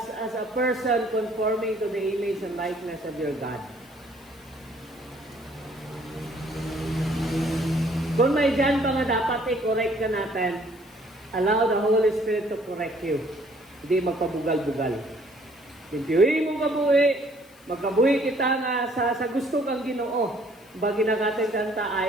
a person conforming to the image and likeness of your God. Kung may dyan pa nga dapat i-correct ka natin, allow the Holy Spirit to correct you. Hindi magpabugal-bugal. Pintiwi mo kabuhi, magkabuhi kita nga sa gusto kang Ginoo. Bagi na natin kanta,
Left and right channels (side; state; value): left; noise; hiss, 27 dB below the sound